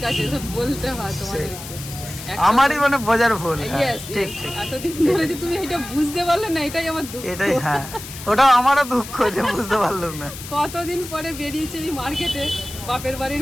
আছে, সব বলতে হয় তোমাদেরকে। আমারই মানে বোঝার ভুল। Yes, ঠিক yes. ঠিক, এতদিন ধরে যে তুমি এটা বুঝতে পারলে না, এটাই আমার দুঃখ। এটাই, হ্যাঁ ওটা আমারও দুঃখ যে বুঝতে পারলাম না। কতদিন পরে বেরিয়েছে এই মার্কেটে, বাপের বাড়ির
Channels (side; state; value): left; noise; hiss, 12 dB below the sound